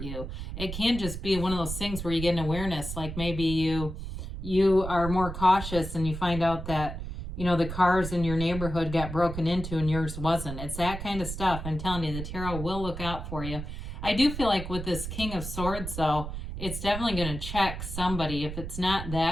you. It can just be one of those things where you get an awareness, like maybe you are more cautious and you find out that the cars in your neighborhood got broken into and yours wasn't. It's that kind of stuff. I'm telling you, the tarot will look out for you. I do feel like with this King of Swords, though, it's definitely going to check somebody. If it's not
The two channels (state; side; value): noise; right; rumble, 7 dB below the sound